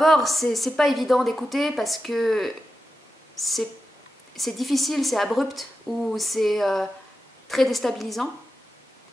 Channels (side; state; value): both; normal; correlation 0.91